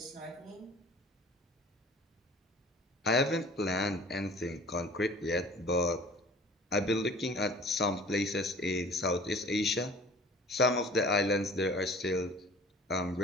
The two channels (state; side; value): normal; both; correlation 0.46